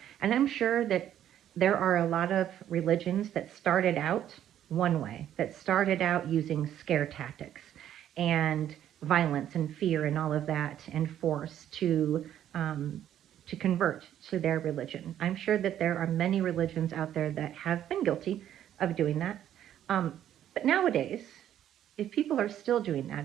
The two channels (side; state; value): left; quieter; 11.0 dB